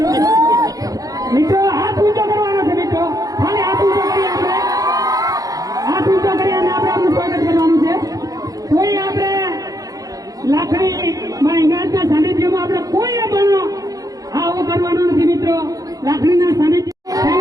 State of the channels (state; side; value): late; left; 0.17 ms